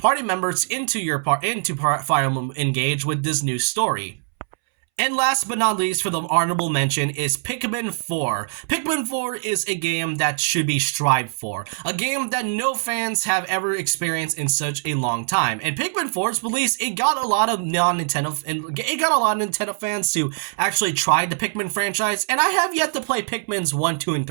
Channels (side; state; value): left; silent; 64 dB below the other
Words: members into Fire Emblem Engage with this new story. And last but not least, for the honorable mention, is Pikmin 4. Pikmin 4 is a game that should be strived for. A game that no fans have ever experienced in such a long time. And Pikmin 4's release, it got a lot of Nintendo fans to actually try the Pikmin franchise. And I have yet to play Pikmin's 1, 2, and